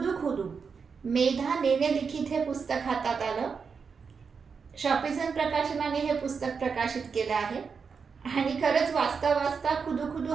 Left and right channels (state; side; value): quieter; left; 5.7 dB